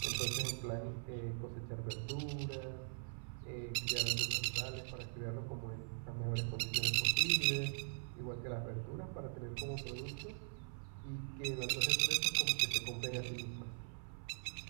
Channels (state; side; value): silent; left; 50 dB below the other